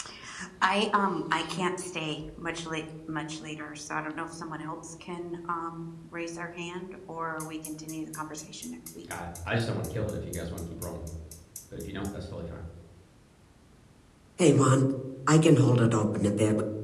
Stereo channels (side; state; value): both; identical; correlation 1.00